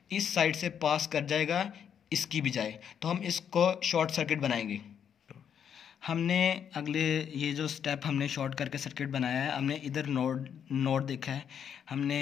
इस साइड से पास कर जाएगा इसकी बजाय। तो हम इसको शॉर्ट सर्किट बनाएंगे। हमने अगले ये जो स्टेप हमने शॉर्ट करके सर्किट बनाया है, हमने इधर नोड देखा है।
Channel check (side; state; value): right; quieter; 8.2 dB